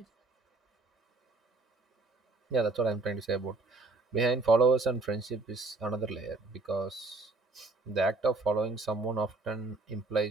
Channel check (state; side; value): quieter; left; 3.4 dB